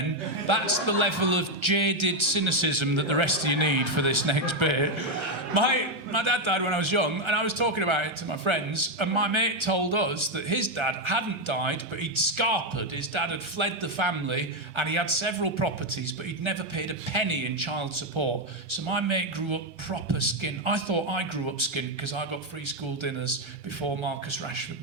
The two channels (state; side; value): late; left; 1.3 ms